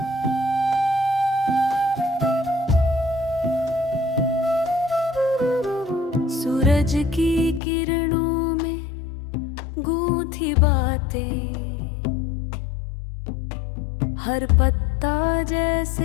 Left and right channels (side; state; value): right; drops out; at 7.6 s